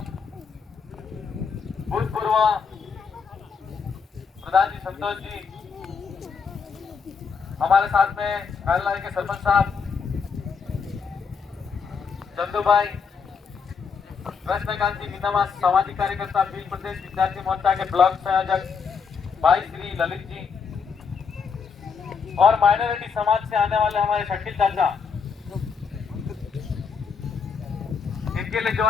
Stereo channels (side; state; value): right; quieter; 5.9 dB